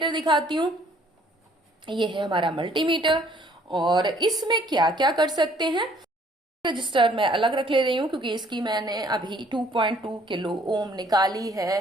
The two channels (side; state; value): both; normal; correlation 0.60